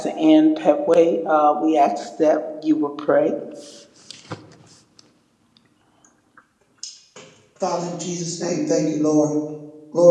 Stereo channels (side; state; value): both; identical; correlation 1.00